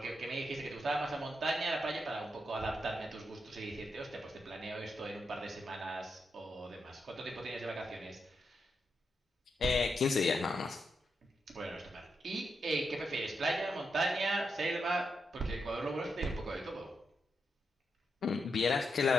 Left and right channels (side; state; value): both; normal; correlation 0.84